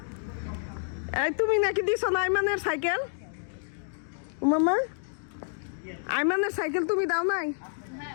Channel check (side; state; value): right; silent; digital silence